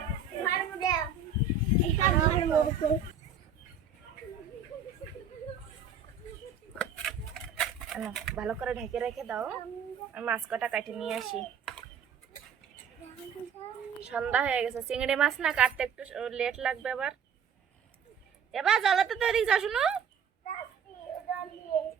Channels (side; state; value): left; quieter; 6.0 dB